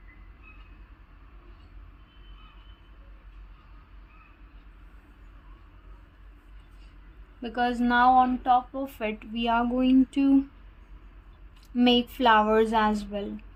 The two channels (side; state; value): both; identical; correlation 1.00